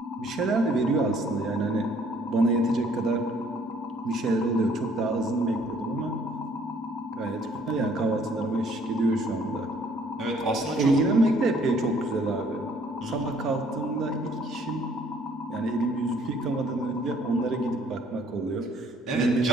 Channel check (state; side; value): normal; both; correlation 0.61